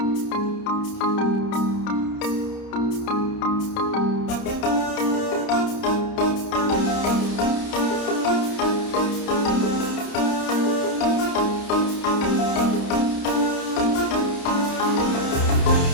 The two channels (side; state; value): right; late; 30 ms